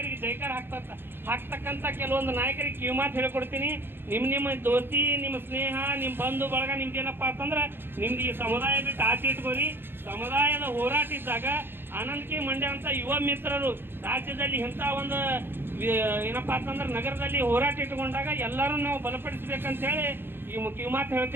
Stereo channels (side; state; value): left; late; 0.10 ms